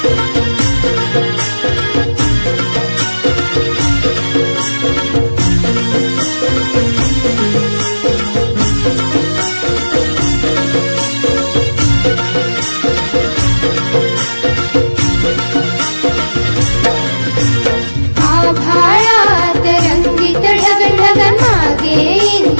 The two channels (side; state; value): both; inverted; correlation -1.00